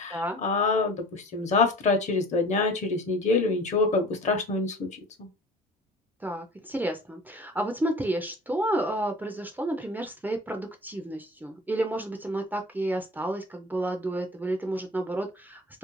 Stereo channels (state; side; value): normal; both; correlation 0.42